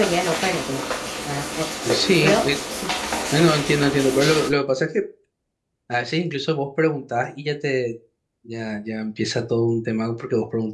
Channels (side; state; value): both; identical; correlation 1.00